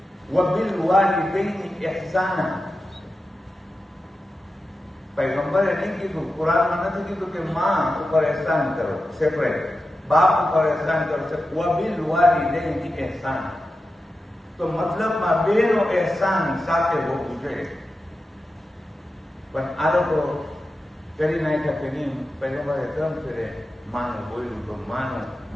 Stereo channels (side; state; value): both; normal; correlation 0.91